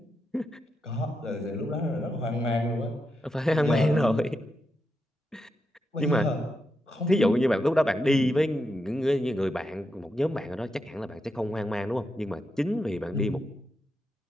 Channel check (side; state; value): both; normal; correlation 0.85